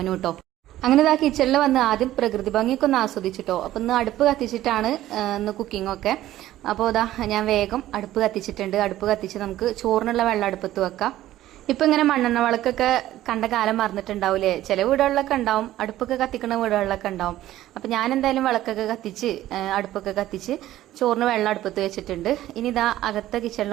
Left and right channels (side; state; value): left; quieter; 14.2 dB